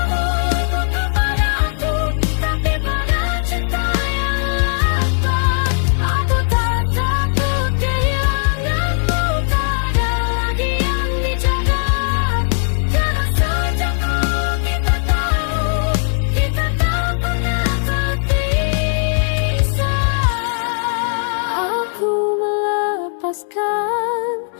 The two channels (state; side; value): silent; right; digital silence